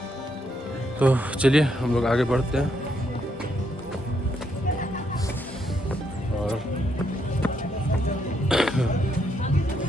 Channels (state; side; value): normal; both; correlation 0.76